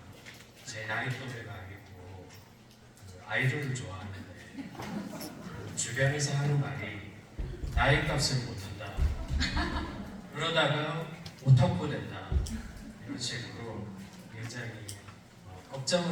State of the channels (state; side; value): identical; both; correlation 1.00